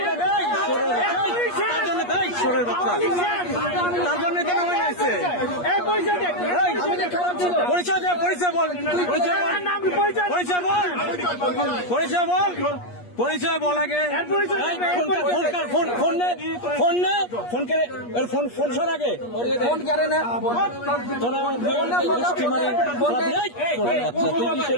লাগাই তার জন্য তাই সরের বাচ্চা তার জন্য তো নামে আসছে পরিচয় দে পরিচয় বল পরিচয় বল পরিচয় বল পরিচয় বল আগে ফোন ফোন নে ফোন নে ফোন করে ফোন ফোন সর আগে ফোন করে না তোরা স্টিমারে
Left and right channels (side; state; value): right; late; 8.4 ms